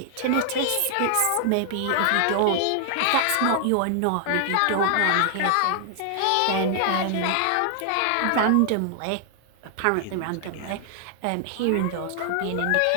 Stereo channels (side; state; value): both; different; correlation 0.00